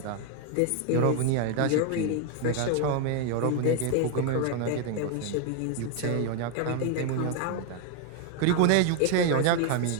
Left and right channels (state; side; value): different; both; correlation 0.01